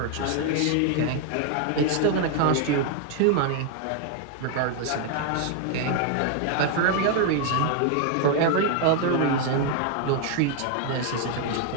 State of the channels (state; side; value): different; both; correlation 0.00